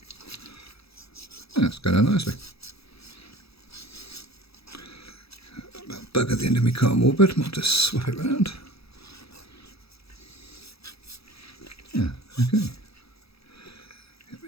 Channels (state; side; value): late; right; 0.77 ms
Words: That's going on nicely. Bug at the end of my cotton wool bed. Might just swap it round. Yeah, okay. Get a